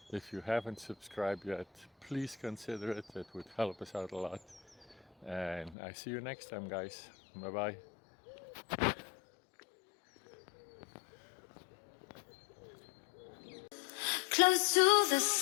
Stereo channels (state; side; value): drops out; right; at 5.8 s